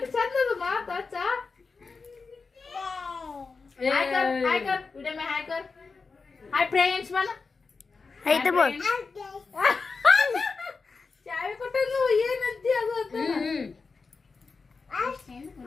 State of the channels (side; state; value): right; quieter; 4.5 dB